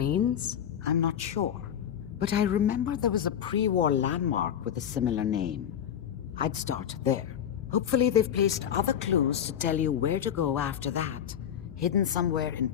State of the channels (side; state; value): right; quieter; 9.3 dB